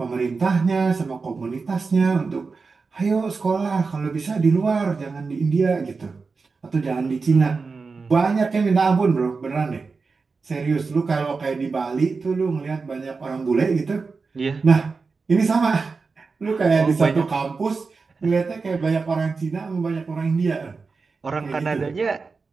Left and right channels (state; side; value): quieter; left; 4.5 dB